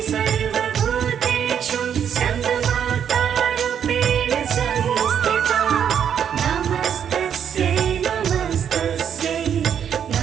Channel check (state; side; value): quieter; left; 8.5 dB